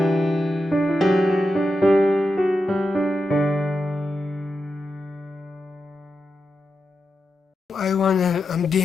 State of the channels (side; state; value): both; normal; correlation 0.88